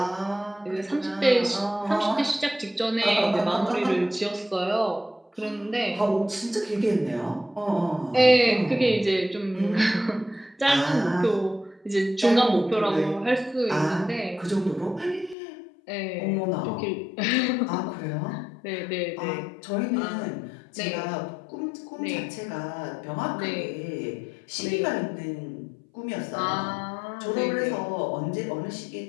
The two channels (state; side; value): drops out; right; at 15.4 s